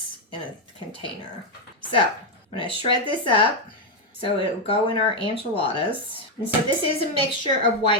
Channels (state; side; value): normal; both; correlation 0.03